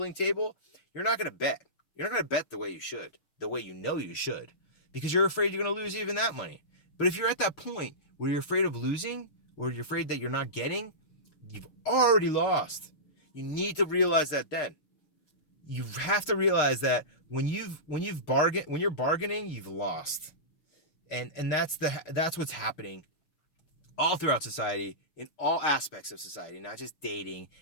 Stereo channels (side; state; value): right; late; 6.6 ms